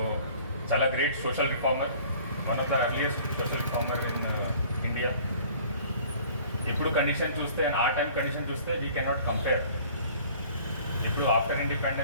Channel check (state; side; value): inverted; both; correlation -0.50